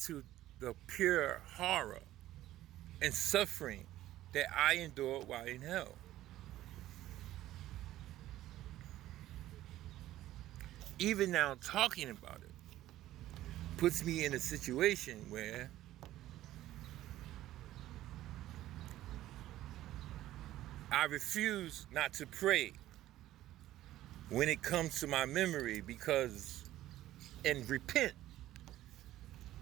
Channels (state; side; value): quieter; left; 14.4 dB